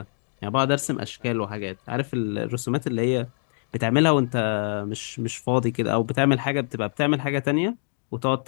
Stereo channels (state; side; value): silent; right; digital silence